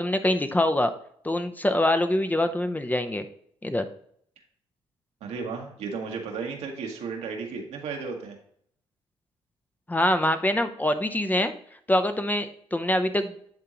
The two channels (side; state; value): both; normal; correlation 0.78